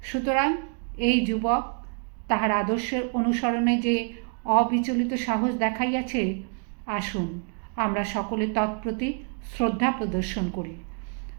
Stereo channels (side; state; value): left; quieter; 39.7 dB